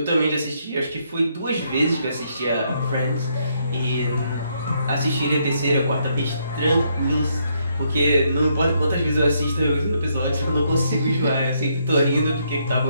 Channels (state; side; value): inverted; both; correlation -0.74